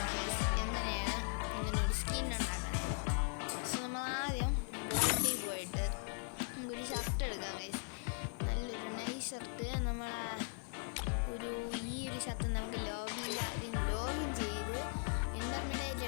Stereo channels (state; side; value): quieter; right; 39.5 dB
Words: ഗൈസ് എങ്ങനെയാണ് ഇങ്ങനൊരു സ്കിൻ ഉണ്ടാക്കണേന്ന്. സോ നമ്മൾ ആദ്യം ബോൾഡിൽ പോയിട്ട് നമുക്കൊരു ഷർട്ട് എടുക്കാം ഗൈസ്. നല്ലൊരു നൈസ് ഷർട്ട്. ഈ ഒരു ഷർട്ട് നമുക്ക് ലോബിയിൽ ആദ്യം ലോഗിൻ ചെയ്ത് ഇൻ്റർമീഡിയറ്റ്